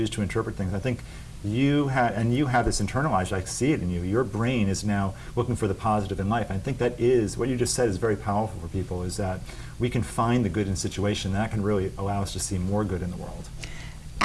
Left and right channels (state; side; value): identical; both; correlation 1.00